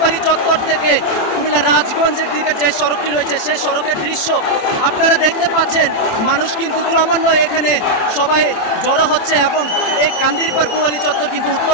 চত্বর থেকে কুমিল্লা রাজগঞ্জের দিকে যে সড়কটি রয়েছে সেই সড়কের দৃশ্য আপনারা দেখতে পাচ্ছেন। মানুষ কিন্তু ক্রমান্বয়ে এখানে সবাই জড়ো হচ্ছে এবং এই কান্দিরপাড় পূবালী চত্বর কিন্তু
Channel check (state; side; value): late; right; 27 ms